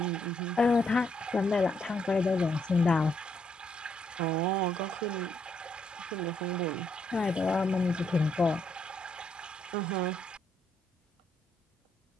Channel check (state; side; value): normal; both; correlation 0.75